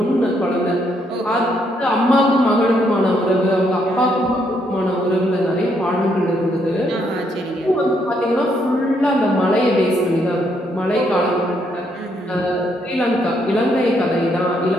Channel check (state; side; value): normal; both; correlation 0.74